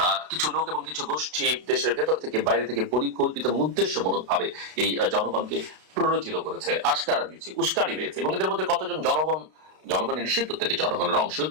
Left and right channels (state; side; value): late; left; 32 ms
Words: কিছু লোক এবং কিছু গোষ্ঠী দেশের ভেতর থেকে বাইরে থেকে পরিকল্পিত এবং উদ্দেশ্যমূলক ভাবে এই জনগণকে প্ররোচিত করেছে, আশকারা দিয়েছে, উস্কানি দিয়েছে। এবং এদের মধ্যে কতজন জনগণের নিশ্চিত প্রত্যেকে জনগণের অংশ,